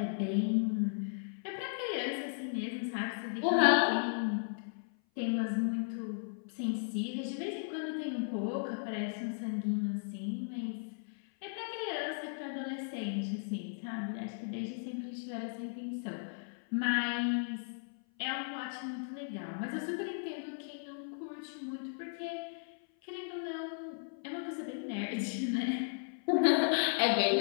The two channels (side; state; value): right; silent; 54 dB below the other